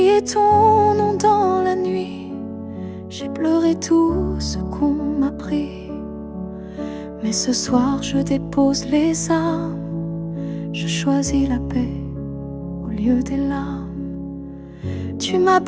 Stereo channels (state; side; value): identical; both; correlation 1.00